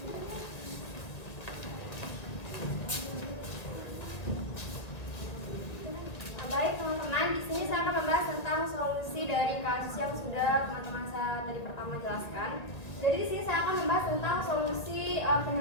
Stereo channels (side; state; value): right; late; 1.8 ms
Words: Baik teman-teman, di sini saya akan membahas tentang solusi dari kasus yang sudah teman-teman saya tadi pertama jelaskan. Jadi di sini saya akan membahas tentang solusi